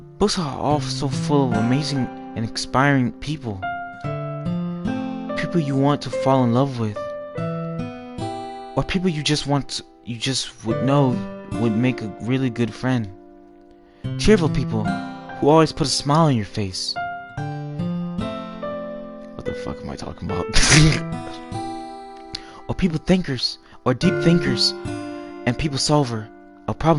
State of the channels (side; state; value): both; identical; correlation 1.00